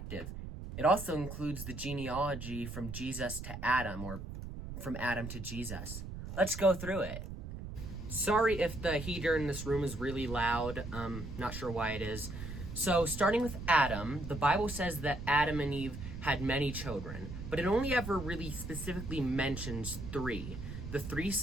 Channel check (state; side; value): noise; right; rumble, 8 dB below the sound